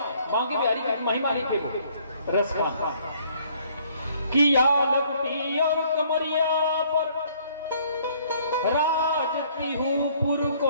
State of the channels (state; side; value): inverted; both; correlation -0.62